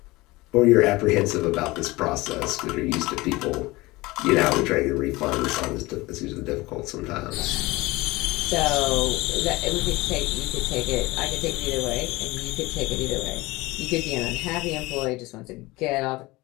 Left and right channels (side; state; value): right; quieter; 21.2 dB